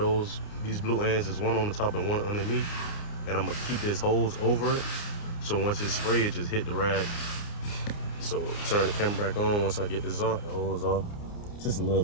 these blue ends. There's one on the top and one underneath. And I'm gonna keep this hose over it. So once it's sprayed, it just hit the rag. So turn the camera back on once I get this off, the hose off. Just a little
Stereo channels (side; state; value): right; late; 29 ms